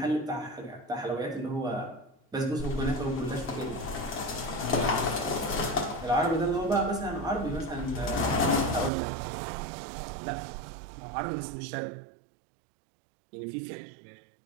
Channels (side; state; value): left; drops out; at 8.9 s